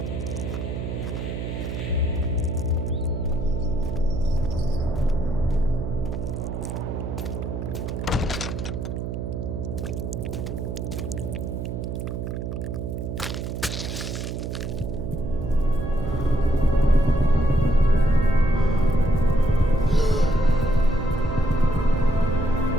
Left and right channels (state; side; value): noise; right; hum, 5 dB below the sound